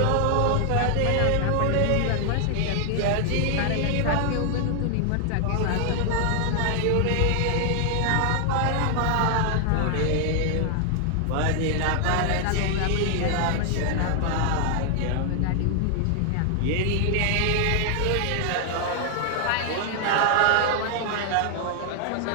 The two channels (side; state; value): both; different; correlation 0.00